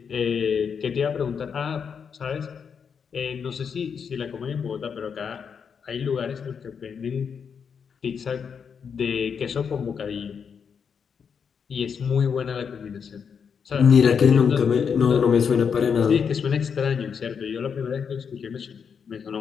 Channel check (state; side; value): quieter; right; 6.6 dB